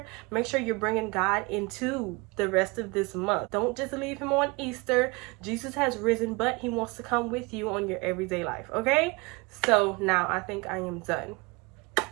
Make sure you're bringing God into the rest of this month. Don't just leave him on Easter. Jesus has risen, but he wants to come with you on your everyday life, okay? So now I think I am done.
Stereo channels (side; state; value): left; quieter; 26.3 dB